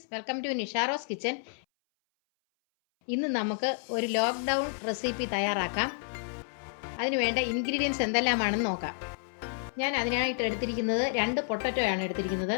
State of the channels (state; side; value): silent; right; 58 dB below the other